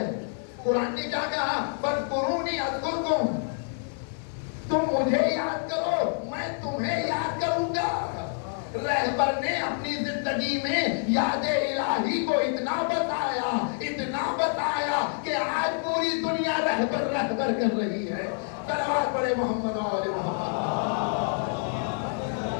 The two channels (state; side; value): silent; right; 60 dB below the other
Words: قرآن نے کیا کہا؟ فاذکرونی اذکرکم، تم مجھے یاد کرو میں تمہیں یاد کروں گا. رہبر نے اپنی زندگی میں یاد الہی کو اتنا بتایا کہ آج پوری دنیا رہبر کر رہی ہے. صلوات پڑھے محمد اور محمد.